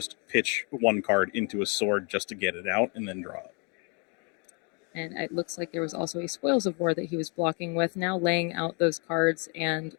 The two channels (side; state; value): right; quieter; 34.5 dB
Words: pitch 1 card into a sword just to get it out and then draw it. And it looks like there was also a Spoils of War that he was blocking with, now laying out those cards and